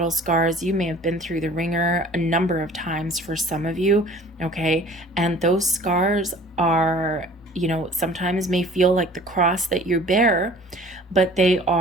scars. You may have been through the ringer a number of times for some of you, okay? And those scars are, sometimes may feel like the cross that you bear, but they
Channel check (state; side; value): normal; both; correlation 0.48